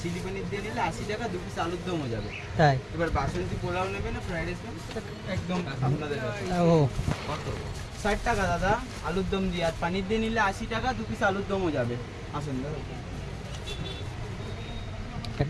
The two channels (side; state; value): both; identical; correlation 1.00